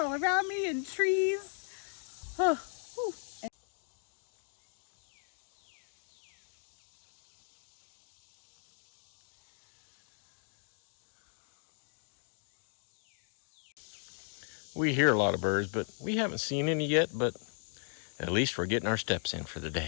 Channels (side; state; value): right; silent; 53 dB below the other